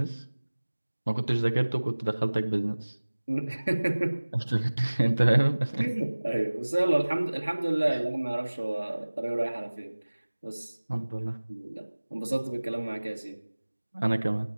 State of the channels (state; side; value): inverted; both; correlation -1.00